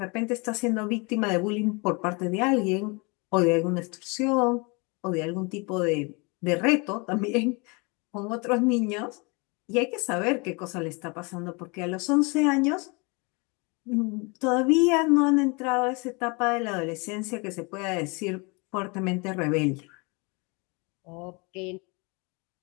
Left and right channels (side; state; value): right; quieter; 29.6 dB